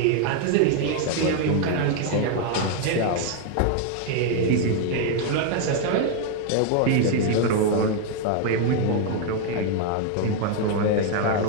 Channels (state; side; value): different; both; correlation 0.00